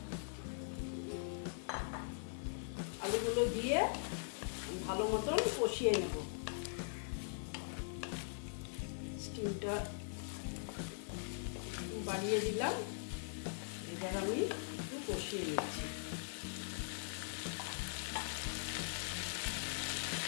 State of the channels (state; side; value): silent; right; digital silence